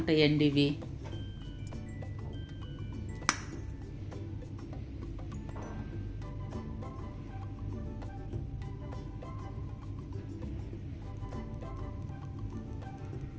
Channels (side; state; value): both; identical; correlation 1.00